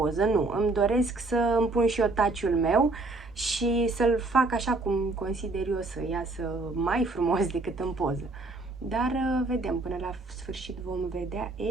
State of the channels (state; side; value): quieter; left; 3.3 dB